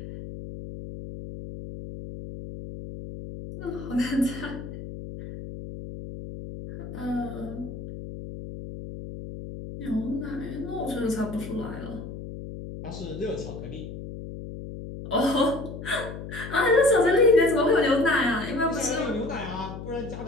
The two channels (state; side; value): noise; left; hum, 10 dB below the sound